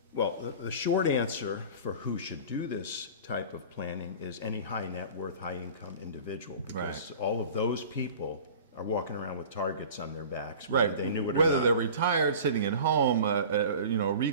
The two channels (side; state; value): both; inverted; correlation -0.39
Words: Well, the short answer for who should do this type of planning is any high net worth, high income individual. Because all of those people are walking around with targets on their backs. Right. They knew it or Whether not. they're retired, sitting at home, a